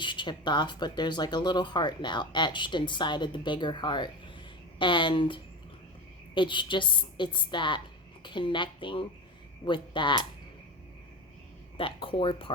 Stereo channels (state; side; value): normal; both; correlation 0.25